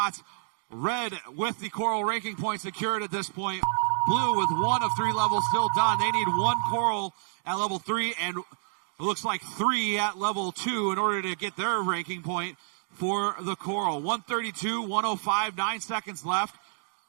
Red with the coral ranking point secured at this point. Blue with 1 of 3 levels still done. They need 1 coral at level 3 and it looks like 3 at level 2 in order to get their ranking point for the coral. 132, 105, 9 seconds left.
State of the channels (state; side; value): silent; left; digital silence